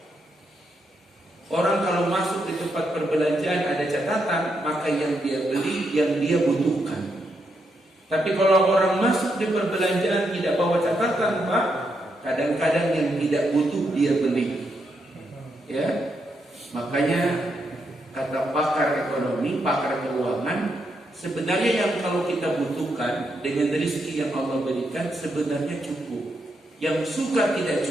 Orang kalau masuk di tempat perbelanjaan ada catatan, maka yang dia beli, yang dia butuhkan. Tapi kalau orang masuk di perbelanjaan tidak bawa catatan, Pak, kadang-kadang yang tidak butuh dia beli. Ya. Makanya kata pakar ekonomi, pakar keuangan, Sebenarnya yang kalau kita butuhkan dengan rezeki yang Allah berikan sebenarnya cukup. Yang suka tidak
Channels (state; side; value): normal; both; correlation 0.80